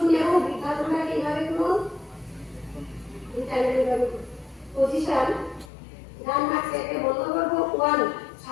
বৃদ্ধাগুলাকে এইভাবে করুন, এইভাবে করুন। পজিশন ডান হাতটাকে বন্ধ করবো। 1,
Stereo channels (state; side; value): drops out; right; at 5.7 s